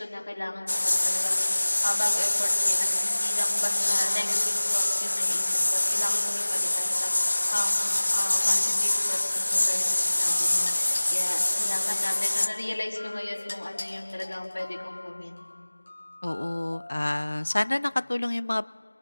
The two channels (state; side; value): inverted; both; correlation -1.00